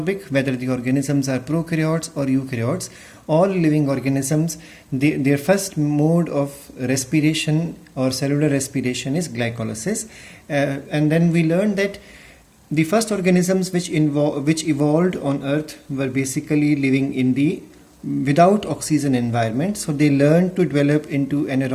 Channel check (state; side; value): identical; both; correlation 1.00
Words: whether the organisms are prokaryotes or eukaryotes. All living organisms, their first mode of respiration or cellular respiration is glycolysis. And then we learned that the first organisms which evolved on Earth were basically living in the without oxygen environment. So they learned to develop into